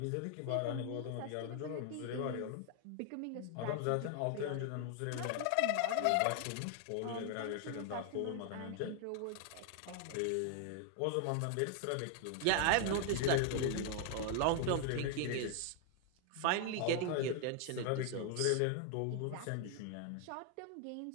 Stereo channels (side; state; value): both; different; correlation 0.00